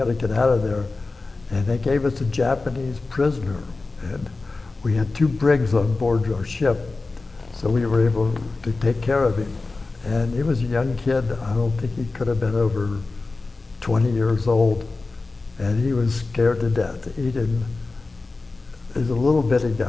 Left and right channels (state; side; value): quieter; right; 3.6 dB